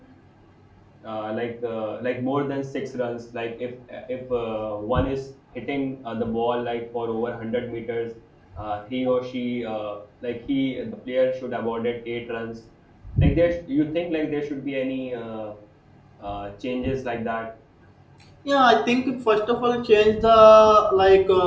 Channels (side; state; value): both; identical; correlation 1.00